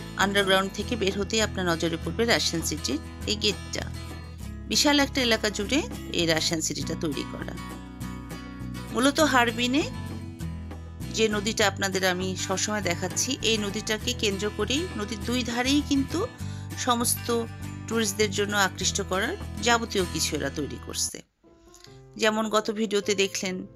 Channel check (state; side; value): identical; both; correlation 1.00